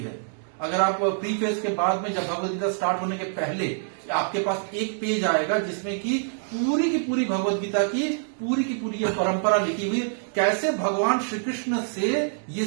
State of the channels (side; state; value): left; silent; digital silence